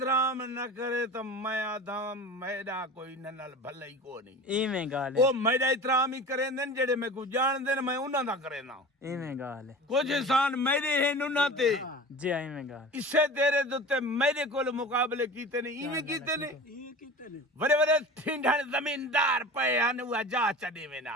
न करे तो मैं आधा मेरा कोई नल भला ही को नहीं इवें गाल वो मेरा इतराम ही करे ने जेड़े मैं को जान दे मैं उन्हां दा करे ना इवें गाल कुछ इंसान मेरे हैं उन्हां ते जी इवें गाल इससे तेरे दुते मेरे कोल मुकाबले कीते ने इवें कीते ने बड़े बड़े ठिंडन जमींदार पे हन वो जा चढ़े में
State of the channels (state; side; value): normal; both; correlation 0.36